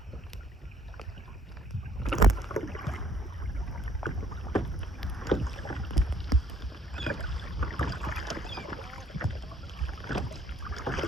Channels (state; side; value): normal; both; correlation 0.62